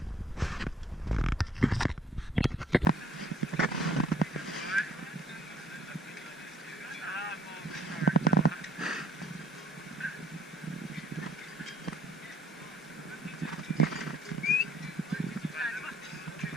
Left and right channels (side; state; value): both; normal; correlation 0.60